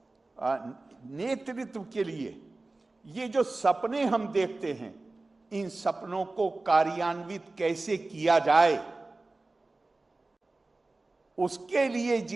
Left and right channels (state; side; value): quieter; left; 3.2 dB